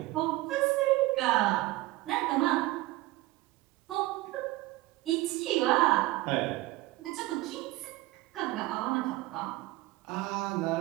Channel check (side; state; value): left; quieter; 18.9 dB